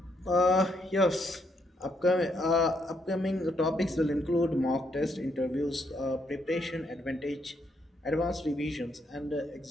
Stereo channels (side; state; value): both; normal; correlation 0.75